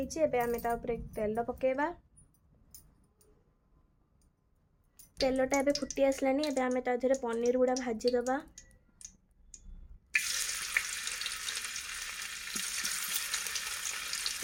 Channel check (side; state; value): both; identical; correlation 1.00